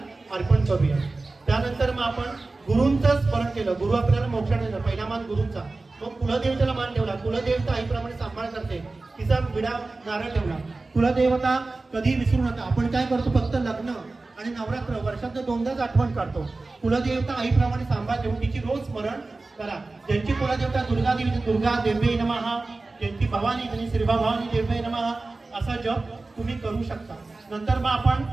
अर्पण करूया। त्यानंतर मग आपण गुरूंचं स्मरण केलं। गुरु आपल्याला मोक्षाने दिला, पहिला मान गुरूंचा, मग कुलदेवतेला मान ठेवला। कुलदेवता आईप्रमाणे सांभाळ करते, तिचा विडा नारळ ठेवला। कुलदेवता कधी विसरू नका। आपण काय करतो, फक्त लग्न आणि नवरात्र वर्षात 2दाच आठवण काढतो। कुलदेवता आईप्रमाणे सांभाळ ठेवून तिची रोज स्मरण करा। ज्यांची कुलदेवता दुर्गा देवी, दुर्गा देव्यै नमः, ज्यांची भवानी त्यांनी श्री भवानी देव्यै नमः असा जप तुम्ही करू शकता। नंतर मग आपण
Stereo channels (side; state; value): left; quieter; 3.4 dB